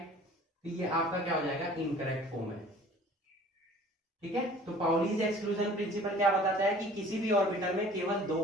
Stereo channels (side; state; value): both; normal; correlation 0.49